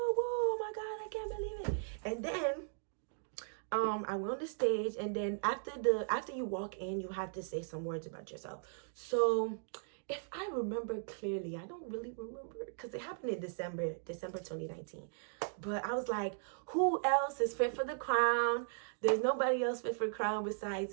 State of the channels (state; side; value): silent; left; digital silence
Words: oh my God, I can't believe it. And then I went on the stage, and then after you walk in, you have to say some words about yourself. So if I remember clearly, I don't really remember, because it happened in December 2019. But I was like, who else is fit for the crown? There's nobody else fit for the crown